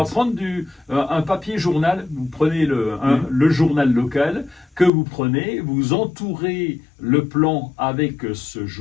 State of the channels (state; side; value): drops out; right; at 4.9 s